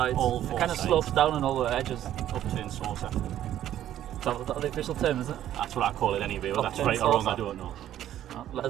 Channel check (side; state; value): left; quieter; 11.9 dB